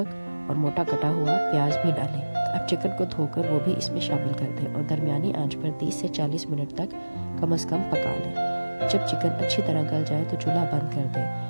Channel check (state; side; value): inverted; both; correlation -1.00